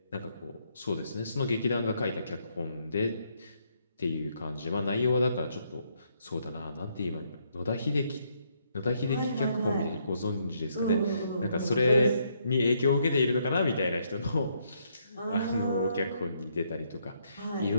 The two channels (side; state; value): both; inverted; correlation -0.73